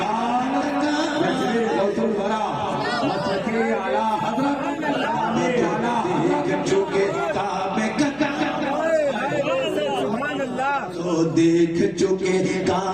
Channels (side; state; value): left; noise; hum, 23 dB below the sound